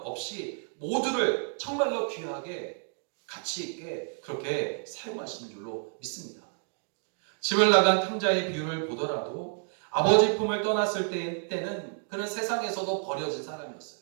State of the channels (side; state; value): left; silent; 58 dB below the other